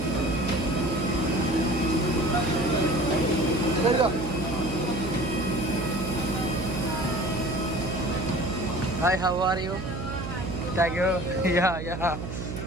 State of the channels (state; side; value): noise; right; hum, 6 dB below the sound